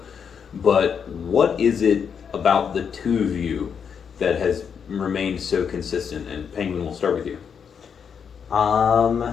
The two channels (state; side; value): quieter; right; 7.0 dB